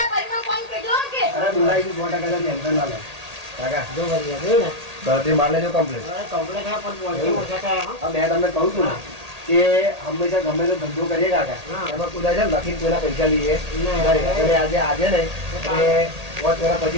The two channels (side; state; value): left; late; 1.8 ms